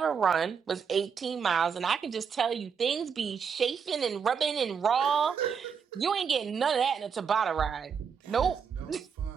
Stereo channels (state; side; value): quieter; left; 6.6 dB